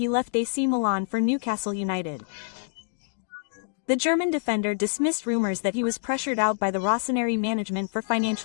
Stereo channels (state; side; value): silent; right; digital silence